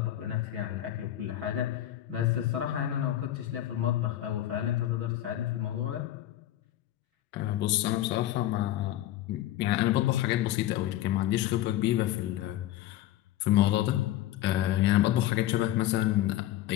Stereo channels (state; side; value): quieter; right; 13.4 dB